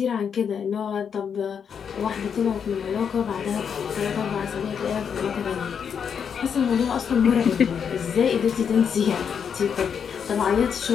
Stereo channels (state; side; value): quieter; right; 7.2 dB